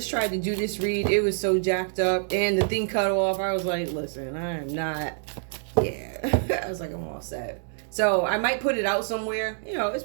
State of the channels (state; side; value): silent; left; 61 dB below the other